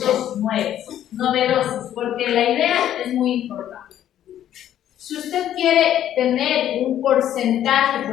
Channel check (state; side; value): quieter; right; 11.3 dB